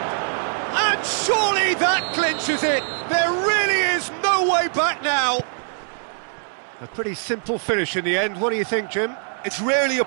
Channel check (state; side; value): silent; left; 64 dB below the other